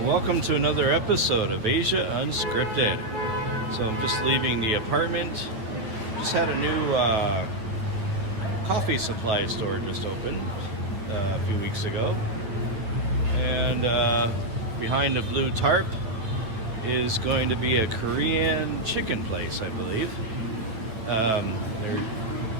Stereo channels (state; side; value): late; left; 8.8 ms